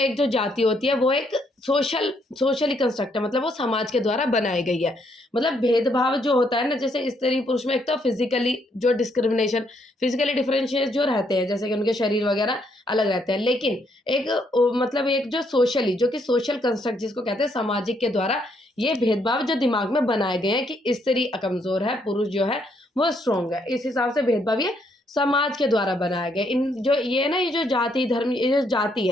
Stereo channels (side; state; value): both; normal; correlation 0.72